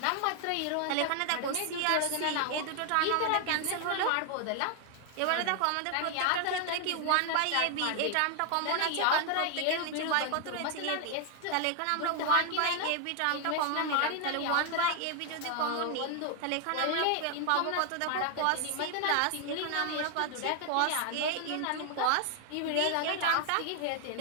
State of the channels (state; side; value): different; both; correlation 0.00